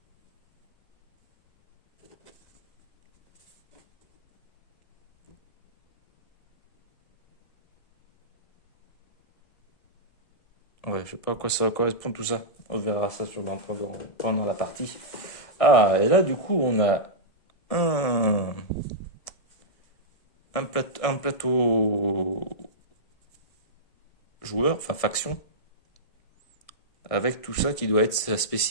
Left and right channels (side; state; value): right; late; 1.7 ms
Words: Ouais, je sais pas à quoi ça correspond tout ça. On verra ça sûrement pendant la partie. Ah, et là, du coup, on a un, un plateau joueur, enfin faction, avec tout ça qui doit être ses